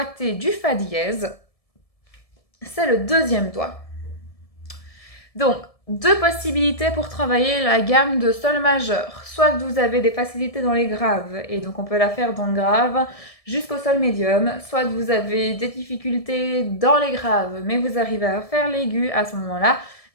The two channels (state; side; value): late; right; 1.7 ms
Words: du fa dièse, c'est le deuxième doigt. Donc, deux possibilités pour travailler la gamme de sol majeur. Soit que vous avez des facilités dans les graves, et donc on peut la faire dans le grave jusqu'au sol médium, soit que vous avez des difficultés dans les graves, mais vous arrivez à faire l'aigu à ce moment-là,